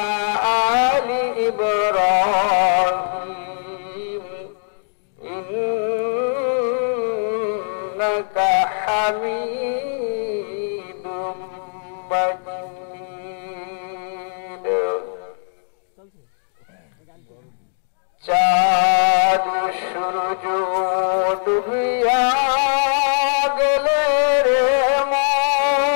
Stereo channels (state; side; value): silent; right; digital silence